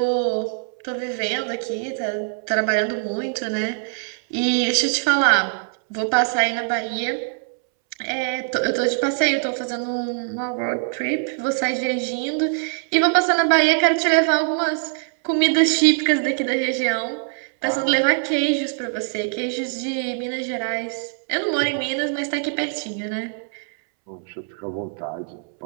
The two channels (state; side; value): silent; left; 64 dB below the other